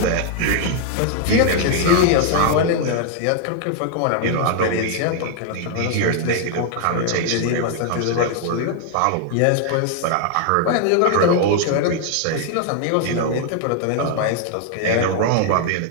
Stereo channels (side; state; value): both; different; correlation 0.00